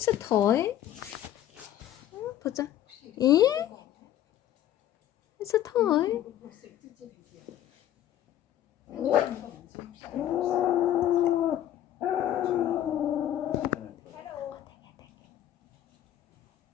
a toy. 보자. 예? It's a toy.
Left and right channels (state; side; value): quieter; right; 11.9 dB